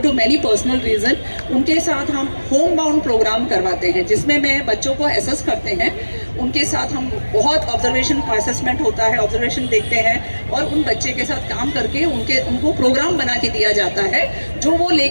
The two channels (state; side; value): inverted; both; correlation -1.00